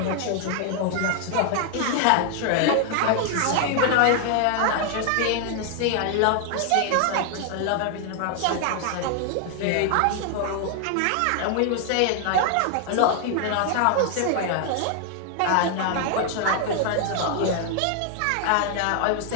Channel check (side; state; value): both; different; correlation 0.00